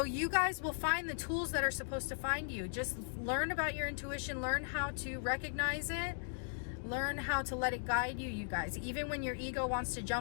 you guys will find the tools that are supposed to find you. Just learn about your intuition, learn how to recognize it, learn how to let it guide you, you guys. Even when your ego wants to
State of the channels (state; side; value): silent; right; digital silence